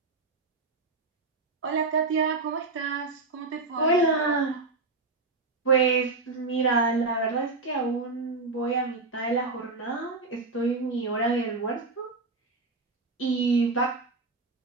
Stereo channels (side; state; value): left; quieter; 3.7 dB